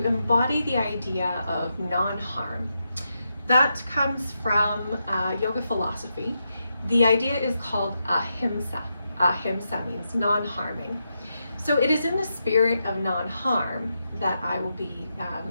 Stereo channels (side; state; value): both; inverted; correlation -0.85